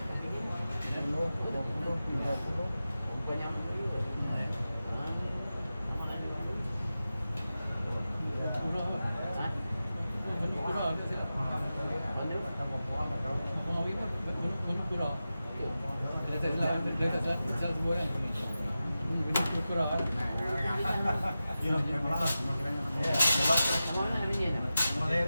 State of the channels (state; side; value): inverted; both; correlation -0.93